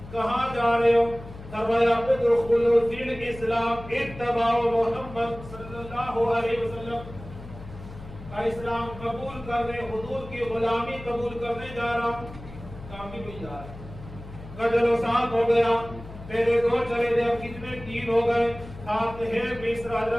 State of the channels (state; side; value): noise; left; hum, 15 dB below the sound